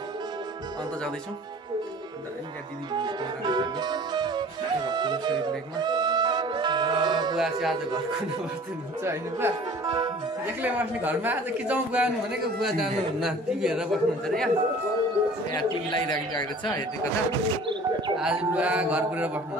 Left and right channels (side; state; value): both; normal; correlation 0.47